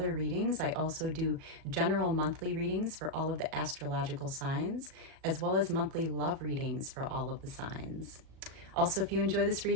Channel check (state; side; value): late; left; 37 ms